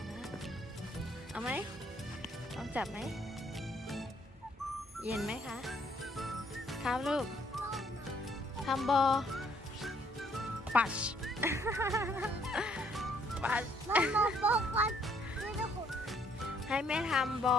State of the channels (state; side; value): normal; both; correlation 0.66